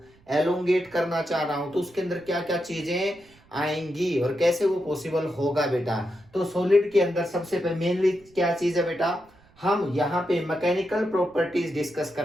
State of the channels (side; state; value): right; noise; rumble, 30 dB below the sound